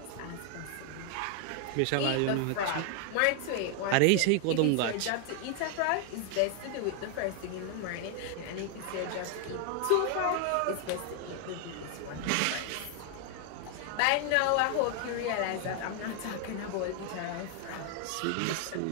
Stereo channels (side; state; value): both; different; correlation 0.00